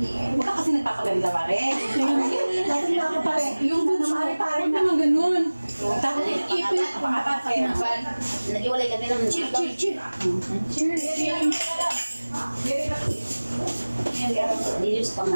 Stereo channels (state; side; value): inverted; both; correlation -1.00